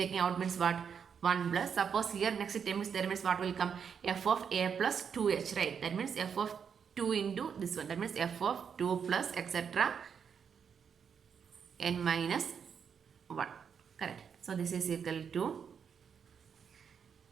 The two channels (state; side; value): quieter; left; 7.0 dB